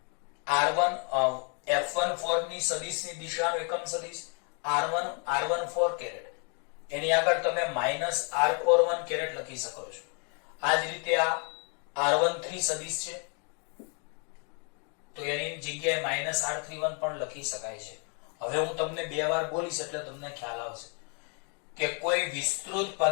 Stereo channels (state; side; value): quieter; right; 38.1 dB